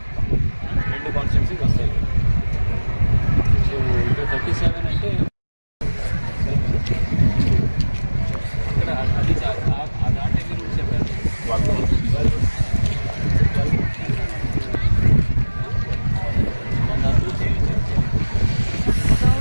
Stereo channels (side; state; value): both; inverted; correlation -1.00